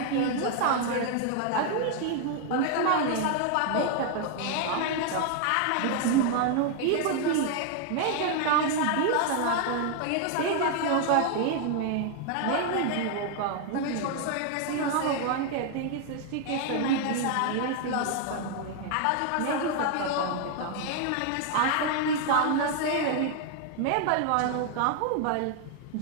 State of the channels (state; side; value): different; both; correlation 0.00